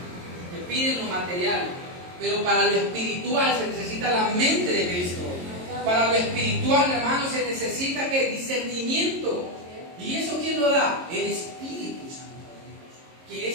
que piden lo material, pero para lo espiritual se necesita la mente de Cristo. Para lo espiritual, hermano, se necesita ¿qué? Discernimiento. ¿Y eso quién lo da? El Espíritu Santo de Dios, que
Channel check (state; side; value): late; left; 22 ms